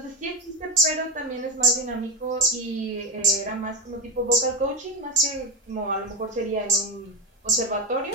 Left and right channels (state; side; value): normal; both; correlation 0.12